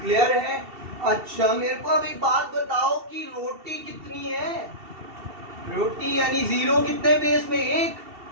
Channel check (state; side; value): late; left; 2.7 ms